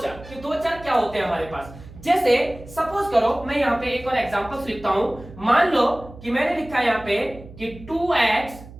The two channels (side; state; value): right; noise; hum, 18 dB below the sound